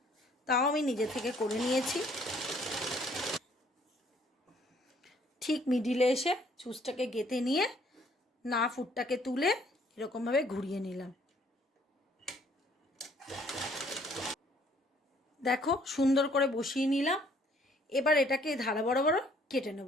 তাও আমি নিজে থেকে করে নিয়েছি। ঠিক মিডিলে এসে চুজটাকে গেঁথে নিয়ে না ফুটটাকে তুলে এরকমভাবে ঘুরিয়ে নিলাম। দেখো সুন্দর করে বসিয়ে নিলাম। এবার এটাকে ধারা বরাবর কেটে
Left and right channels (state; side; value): normal; both; correlation 0.62